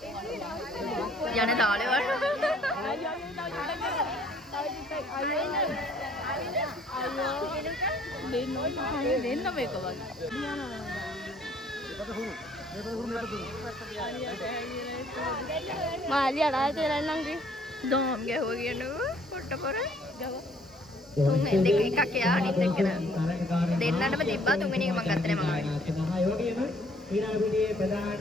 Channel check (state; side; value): normal; both; correlation 0.60